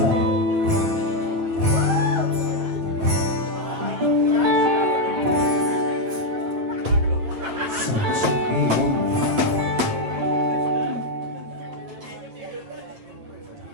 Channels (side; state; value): left; late; 8.7 ms